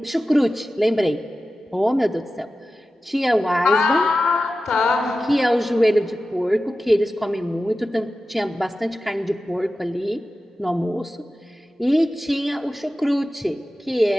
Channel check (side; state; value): both; normal; correlation 0.94